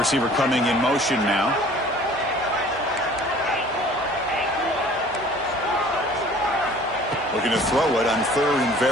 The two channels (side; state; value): both; normal; correlation 0.49